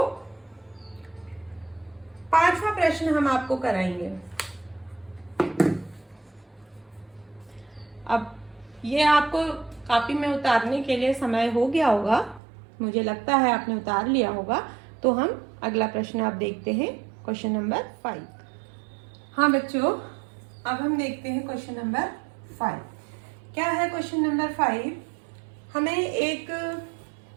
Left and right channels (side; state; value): left; drops out; at 12.4 s